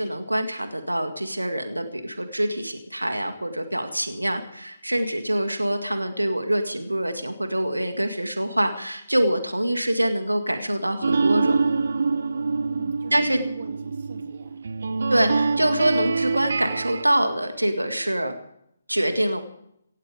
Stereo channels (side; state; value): both; inverted; correlation -0.95